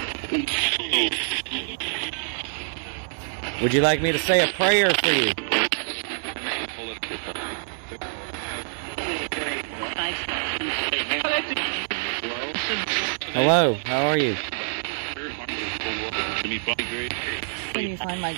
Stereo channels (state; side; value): silent; left; digital silence